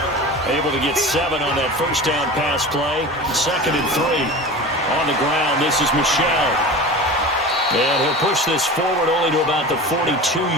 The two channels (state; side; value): normal; both; correlation 0.33